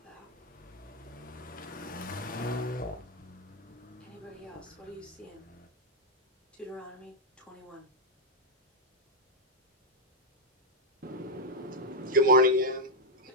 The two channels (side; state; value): both; normal; correlation -0.01